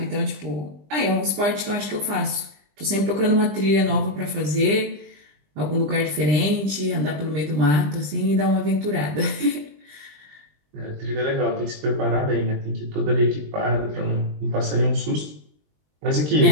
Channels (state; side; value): late; left; 20 ms